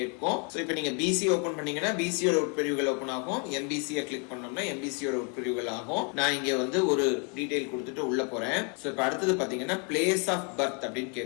ஸோ இப்போ நீங்க பிசி ஓபன் பண்ணீங்கன்னா பிசியோட உட்பிரிவுகள் ஓபன் ஆகும், எம்பிசியை கிளிக் பண்ணோம்னா எம்பிசியோட உட்பிரிவுகள் ஆகும். நான் இங்க வந்து ஒரு டீடைல் கொடுத்துட்டு உள்ள போறேன். ஸோ இப்போ அடுத்தது பாத்தீங்கன்னா பிளேஸ் ஆஃப் பர்த் அப்படின்னு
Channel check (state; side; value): quieter; right; 34.1 dB